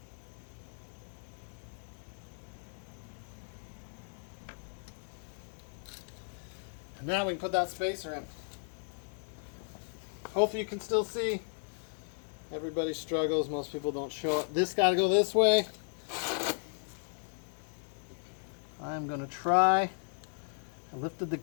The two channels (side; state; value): right; silent; 54 dB below the other